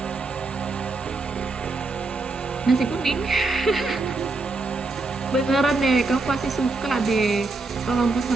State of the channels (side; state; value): left; quieter; 3.5 dB